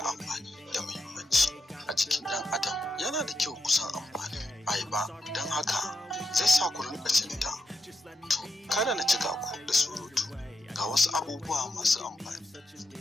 amfani da muhimmanci a jikin ɗan adam. Yana da kyau kusan amfani ayaba, don haka zai sa ku rinƙa cin ta. To kada na cika ku da surutu, ga wasu abubuwa masu amfani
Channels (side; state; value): both; normal; correlation 0.85